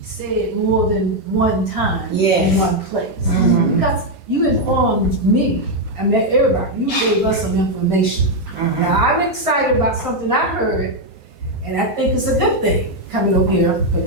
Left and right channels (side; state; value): both; normal; correlation 0.02